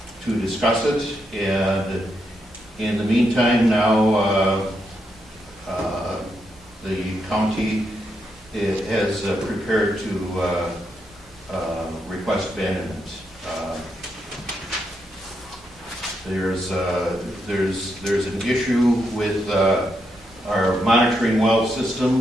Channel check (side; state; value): both; normal; correlation 0.81